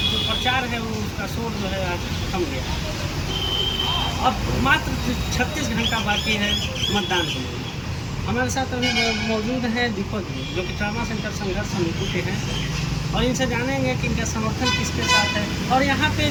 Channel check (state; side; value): identical; both; correlation 1.00